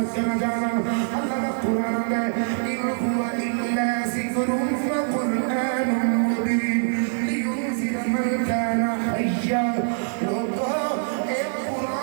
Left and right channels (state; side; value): silent; left; 57 dB below the other